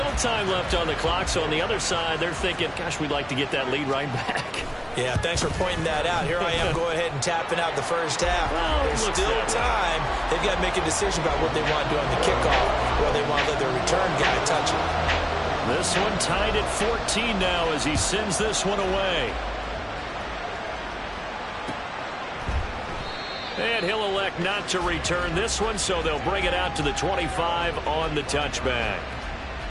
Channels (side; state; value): both; identical; correlation 1.00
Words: time left on the clock, so on the other side, they're thinking, gosh, we'd like to get that lead right back. Yeah, thanks for pointing that out. Here I am, go ahead and tapping out the first half. Well, there's still time. They've got to make a decision about what they want to do on the kickoff, or they want to let their return guy touch it. This one tied at 14 now as he sends this one away. And he'll elect not to return this one, so they'll bring it out to the 25 on the touchback.